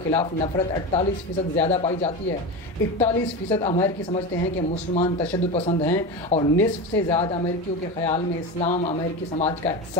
खिलाफ नफरत 48% ज़्यादा पाई जाती है। 41% अमेरिकी समझते हैं कि मुसलमान तशद्दुद पसंद हैं और निस्फ से ज़्यादा अमेरिकियों के ख़याल में इस्लाम अमेरिकी समाज का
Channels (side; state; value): both; normal; correlation 0.23